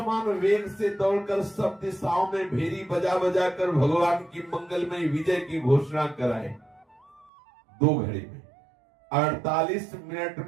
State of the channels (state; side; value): drops out; left; at 7.3 s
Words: वेग से दौड़कर सब दिशाओं में भेरी बजा बजा कर भगवान की मंगलमय विजय की घोषणा कराए। 2 घड़ी में 48 मिनट